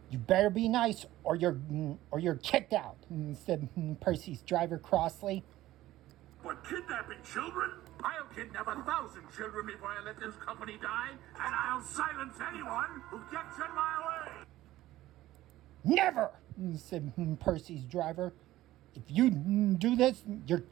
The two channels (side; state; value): left; quieter; 15.5 dB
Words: You better be nice, or you're kicked out, said Percy's driver crossly. But kidnapping children? I'll kidnap 1,000 children before I let this company die, and I'll silence anyone who gets in my way. Never, said Percy's driver. If you do this, you're